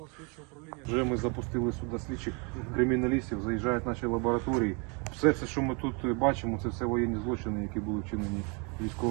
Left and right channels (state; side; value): quieter; left; 33.2 dB